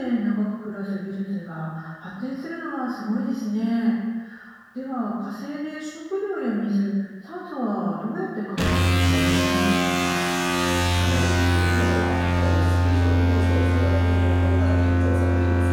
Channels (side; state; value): both; identical; correlation 1.00